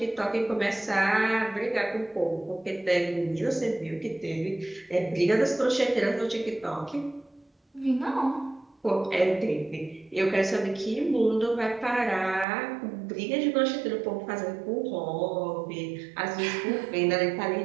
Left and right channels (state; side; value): drops out; left; at 12.5 s